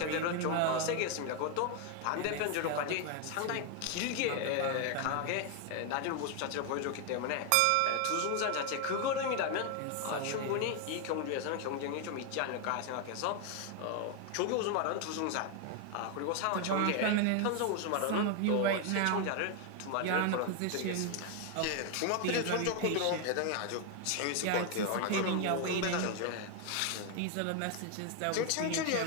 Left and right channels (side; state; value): both; different; correlation 0.01